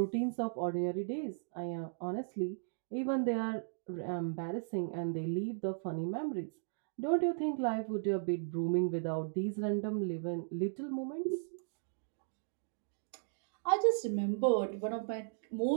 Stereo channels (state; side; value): silent; left; digital silence